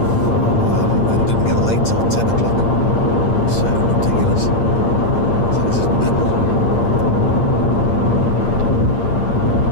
and didn't get light till 10 o'clock. It's ridiculous. So this is mental.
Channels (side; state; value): right; late; 8.6 ms